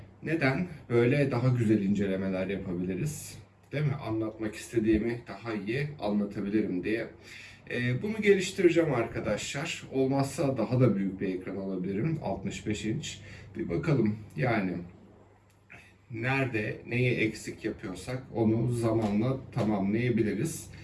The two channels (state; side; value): identical; both; correlation 1.00